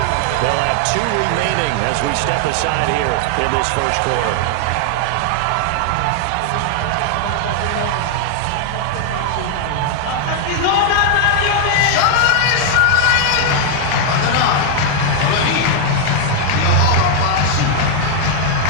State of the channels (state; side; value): different; both; correlation 0.00